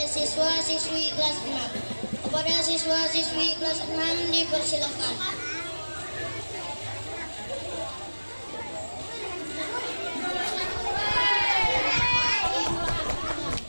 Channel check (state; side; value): inverted; both; correlation -1.00